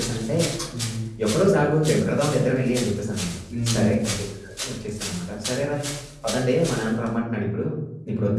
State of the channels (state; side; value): identical; both; correlation 1.00